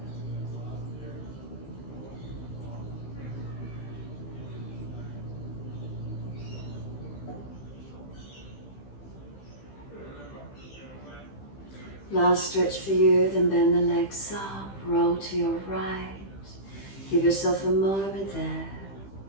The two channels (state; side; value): late; right; 15 ms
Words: Last stretch for you, then bend the legs up, roll to your right. Give yourself a moment there.